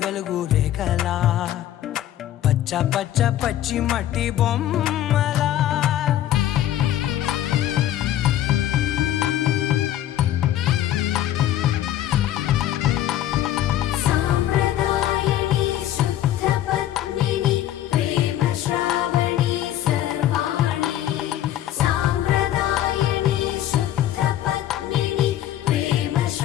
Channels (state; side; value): quieter; right; 12.4 dB